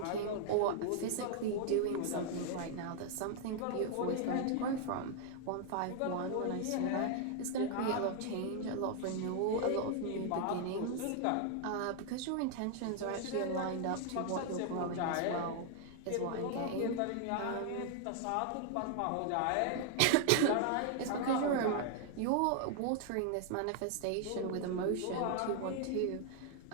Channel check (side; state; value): both; different; correlation 0.00